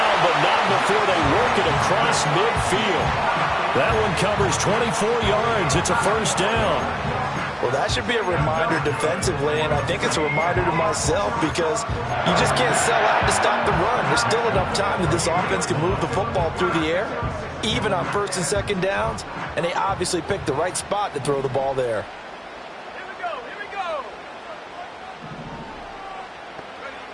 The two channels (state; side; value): identical; both; correlation 1.00